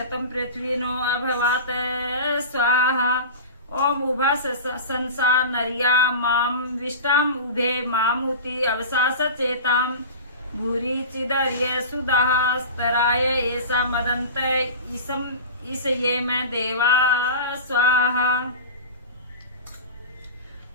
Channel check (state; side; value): inverted; both; correlation -0.31